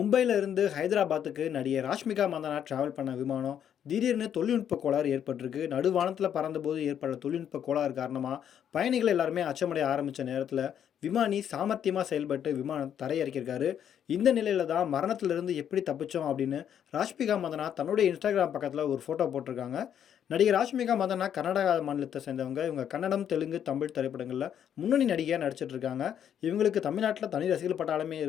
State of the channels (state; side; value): quieter; right; 9.2 dB